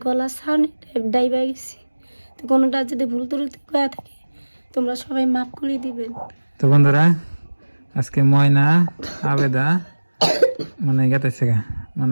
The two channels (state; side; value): inverted; both; correlation -1.00